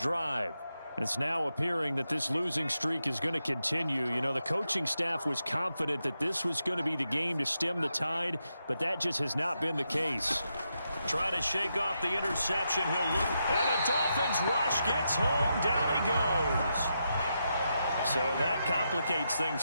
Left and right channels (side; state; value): both; inverted; correlation -0.84